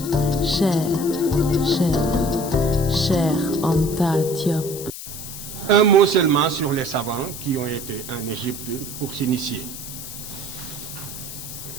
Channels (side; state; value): left; noise; hiss, 10 dB below the sound